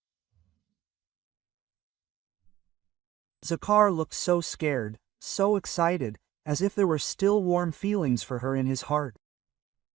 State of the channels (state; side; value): quieter; left; 14.2 dB